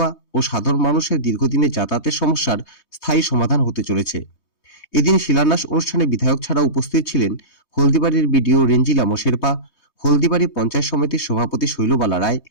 ও সাধারণ মানুষের দীর্ঘদিনের যাতায়াতের সমস্যার স্থায়ী সমাধান হতে চলেছে। এদিন শিলান্যাস অনুষ্ঠানে বিধায়ক ছাড়াও উপস্থিত ছিলেন হলদিবাড়ির বিডিও রেঞ্জিলা শেরপা, হলদিবাড়ি পঞ্চায়েত সমিতির সভাপতি শৈলবালা রায়,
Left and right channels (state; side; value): late; right; 3.2 ms